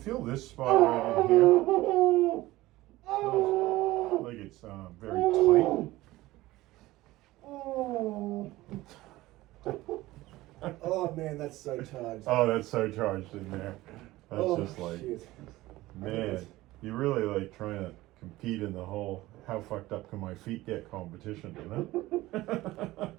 this spot right in here? Feels like it's very tight. Oh man, that's so charged. Oh, that's so charged in there. That's just like, shit. man, you're really like trying to compete in the whole how fucked up can my feet get competition, you know?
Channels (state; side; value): quieter; left; 17.9 dB